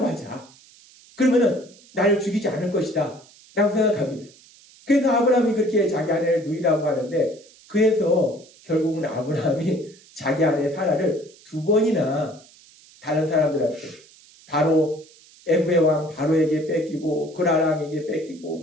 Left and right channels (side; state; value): right; noise; hiss, 25 dB below the sound